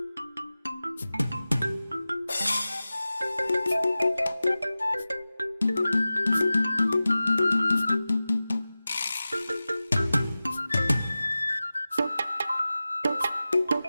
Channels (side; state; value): both; inverted; correlation -0.96